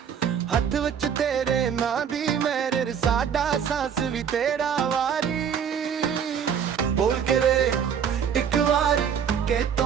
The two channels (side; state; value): left; quieter; 7.8 dB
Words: ਹੱਥ ਵਿੱਚ ਤੇਰੇ ਨਾਂ ਦੀ ਮੇਰੇ, ਸਾਡਾ ਸਾਂਸ ਵੀ ਤੇਰਾ ਵਾਰੀ। ਬੋਲ ਕੇ ਵੇ ਇੱਕ ਵਾਰੀ ਕਿ